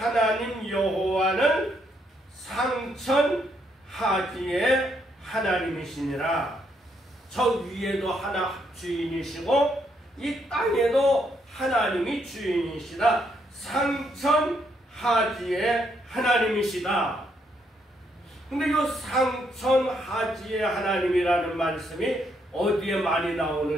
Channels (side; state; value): both; normal; correlation 0.74